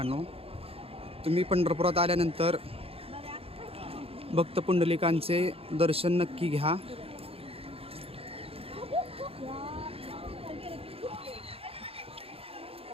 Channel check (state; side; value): late; left; 0.28 ms